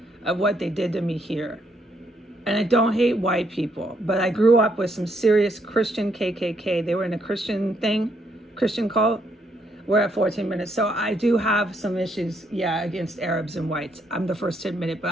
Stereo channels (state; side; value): normal; both; correlation 0.73